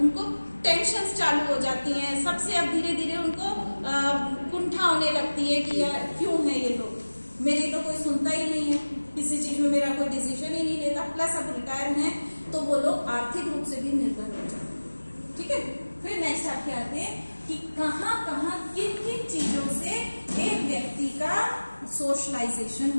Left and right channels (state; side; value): inverted; both; correlation -1.00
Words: उनको टेंशन्स चालू हो जाती हैं, सबसे अब धीरे धीरे उनको कुंठा होने लगती है कि यार क्यों है ये लोग, मेरी तो कोई सुनता ही नहीं है, किसी चीज में मेरा कोई डिसीजन ही नहीं लेता, प्लस अब रिटायर हैं तो वो लोग आर्थिक रूप से भी निर्भर हो जाते हैं। ठीक है, फिर नेक्स्ट आपके आते हैं कि कहाँ कहाँ किन किन चीजों से एक व्यक्ति का सोशलाइजेशन